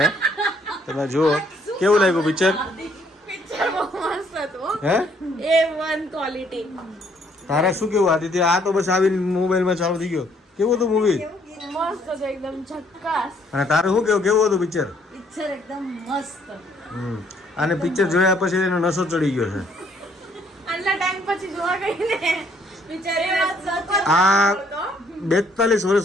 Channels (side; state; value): both; normal; correlation 0.66